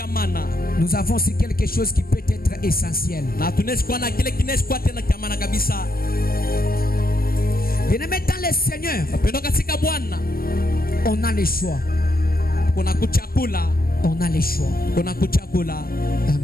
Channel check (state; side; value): late; right; 0.43 ms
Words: Nous avons aussi quelque chose qui peut être essentiel. Bien-aimé dans le Seigneur, on a le choix. On a le choix.